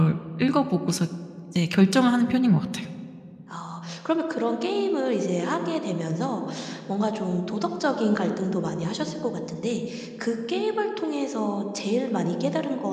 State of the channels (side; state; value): both; identical; correlation 1.00